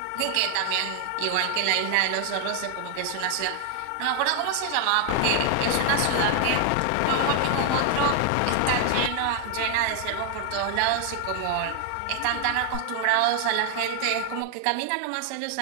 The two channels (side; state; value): both; different; correlation 0.00